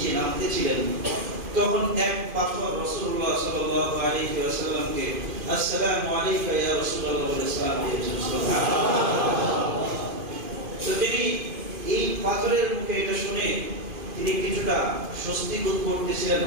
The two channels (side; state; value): left; late; 2.5 ms